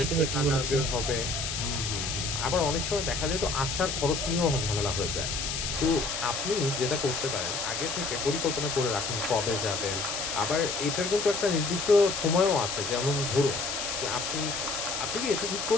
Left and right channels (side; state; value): left; noise; hiss, 3 dB below the sound